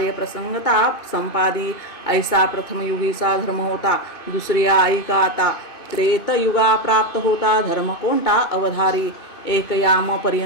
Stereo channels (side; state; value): right; late; 2.5 ms